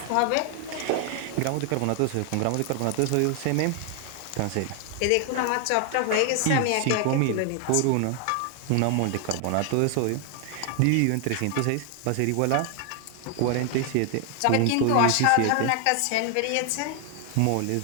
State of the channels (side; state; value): both; different; correlation 0.00